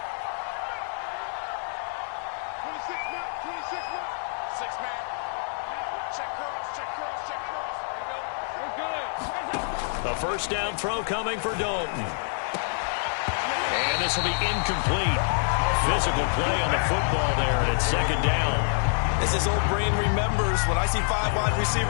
A first down throw coming for Dalton. And this will be incomplete. Physical play on the football there, and it's second down. As his old brain remembers, when I see 5 wide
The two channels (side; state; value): right; silent; digital silence